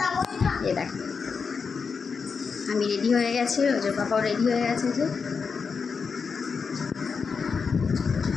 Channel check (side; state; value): right; quieter; 5.4 dB